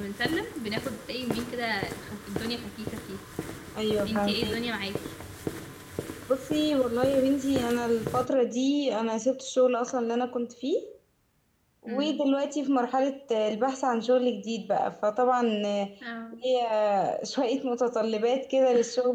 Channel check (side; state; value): both; identical; correlation 1.00